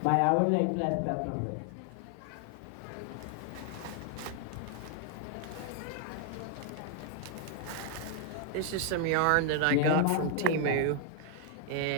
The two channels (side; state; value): both; different; correlation 0.00